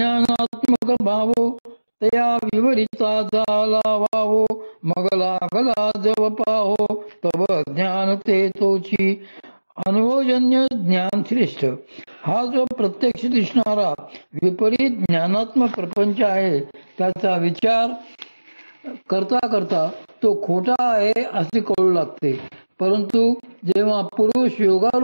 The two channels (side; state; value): both; inverted; correlation -1.00